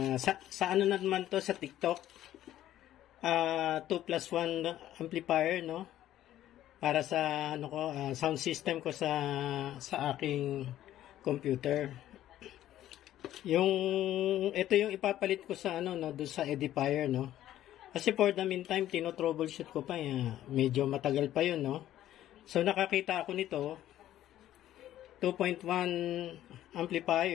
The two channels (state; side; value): quieter; right; 12.8 dB